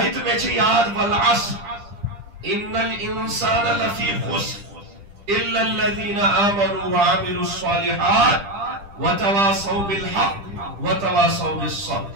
تو میں چھے یاد والعصر ان الانسان لفی خسر الا الذین آمنوا وعملوا الصالحات وتواصوا بالحق وتواصوا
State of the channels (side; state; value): left; late; 10 ms